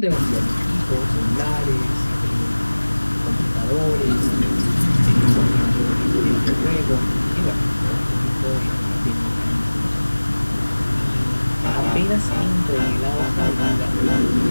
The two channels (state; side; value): inverted; both; correlation -1.00